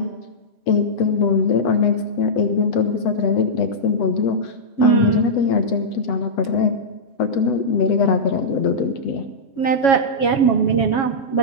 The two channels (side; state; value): right; late; 7.3 ms